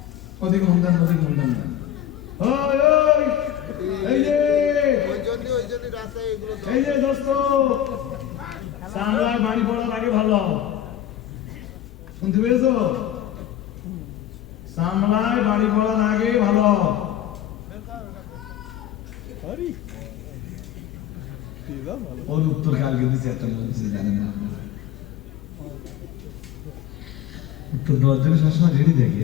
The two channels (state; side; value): quieter; right; 11.7 dB